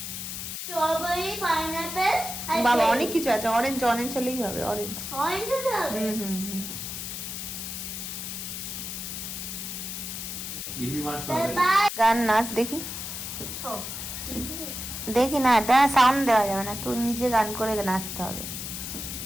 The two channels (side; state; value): left; noise; hiss, 6 dB below the sound